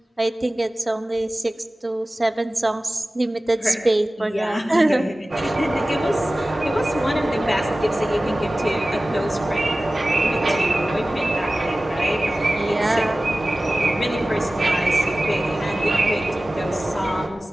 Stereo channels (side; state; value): both; normal; correlation 0.97